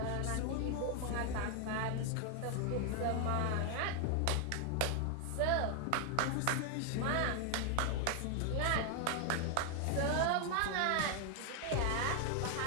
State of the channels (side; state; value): both; different; correlation 0.00